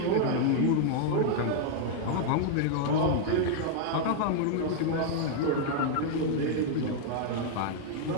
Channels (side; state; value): both; different; correlation -0.01